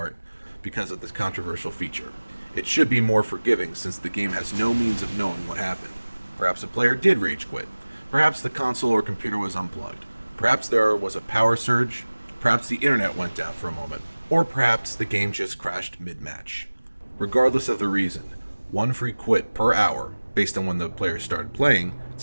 because of this controversial feature. It should be more forgiving since the game has no means of knowing what happened. Perhaps a player did rage quit. Perhaps the console or computer was unplugged. Perhaps there was a power surge. Perhaps the internet went down for a moment. Or perhaps the game just crashed mid-match. Regardless of the reason, 1 free quit per hour, based on when the player started playing,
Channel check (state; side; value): inverted; both; correlation -1.00